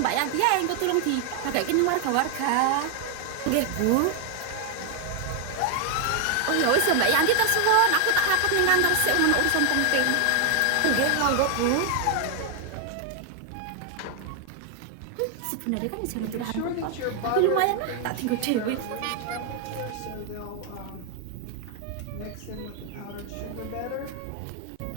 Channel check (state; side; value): different; both; correlation 0.00